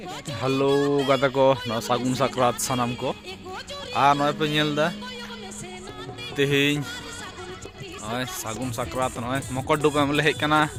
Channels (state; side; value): identical; both; correlation 1.00